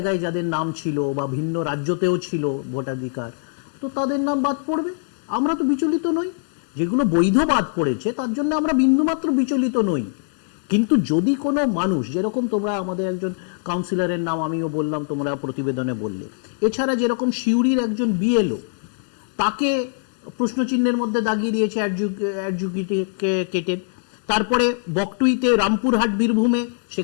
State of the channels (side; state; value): right; silent; digital silence